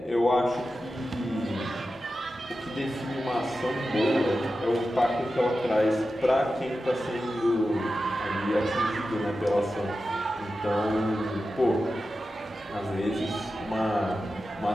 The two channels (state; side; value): normal; both; correlation 0.92